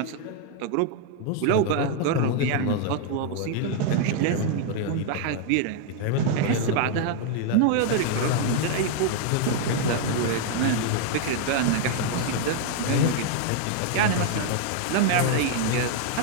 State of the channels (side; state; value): both; different; correlation 0.00